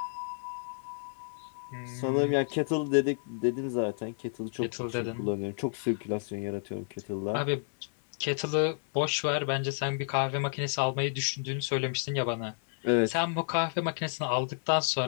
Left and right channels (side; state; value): right; silent; 57 dB below the other